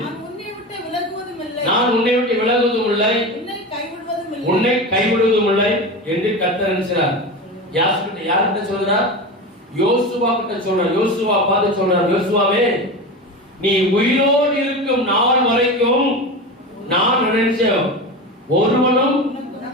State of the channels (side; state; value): both; normal; correlation 0.25